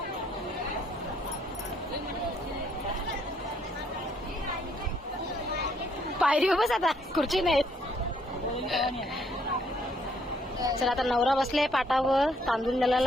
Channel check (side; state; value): both; normal; correlation 0.68